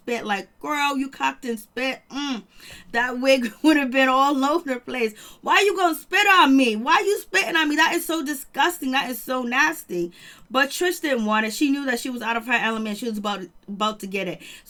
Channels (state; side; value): identical; both; correlation 1.00